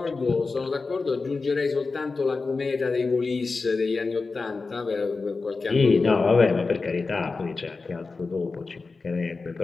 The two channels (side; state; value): right; quieter; 4.1 dB